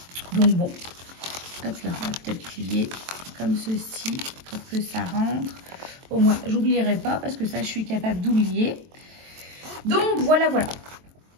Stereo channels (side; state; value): left; late; 23 ms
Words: Donc bon, hop là, on va peut-être plier comme ceci pour que ça rentre. Au moins, j'oublierai pas parce que ça, je suis capable d'oublier. Donc voilà, voilà